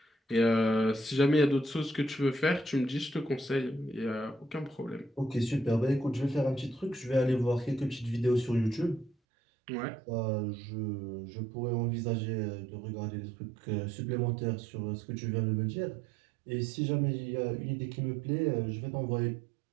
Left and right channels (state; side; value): drops out; left; at 9.2 s